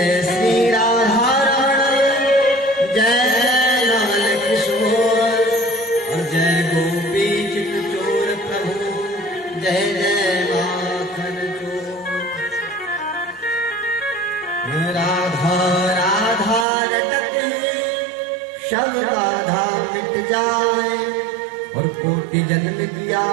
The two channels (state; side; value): drops out; left; at 16.7 s